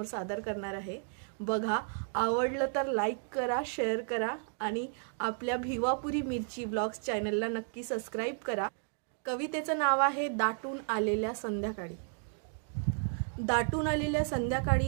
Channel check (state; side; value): silent; left; 56 dB below the other